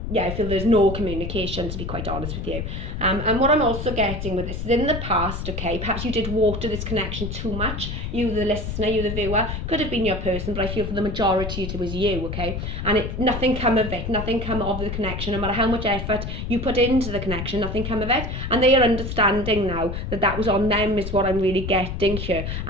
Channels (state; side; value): noise; left; rumble, 5 dB below the sound